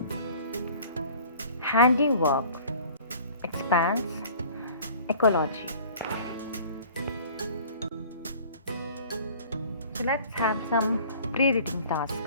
handiwork, expanse, ecology. So let's have some pre-reading task.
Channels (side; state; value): both; inverted; correlation -0.48